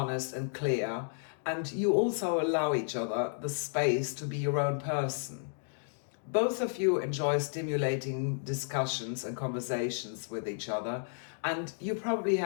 and clear, and you also allow each other the space to be your own person. Both of you enjoy stimulating discussions and conversations with each other, and you probably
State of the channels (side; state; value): right; silent; digital silence